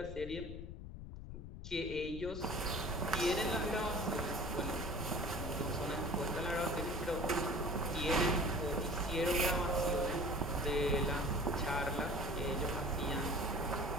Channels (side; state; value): left; noise; rumble, 9 dB below the sound